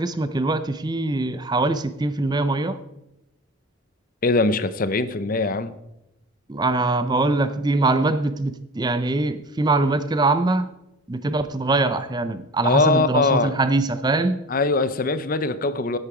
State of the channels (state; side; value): normal; both; correlation 0.35